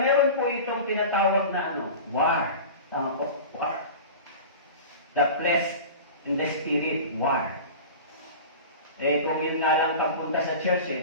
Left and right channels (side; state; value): both; inverted; correlation -0.34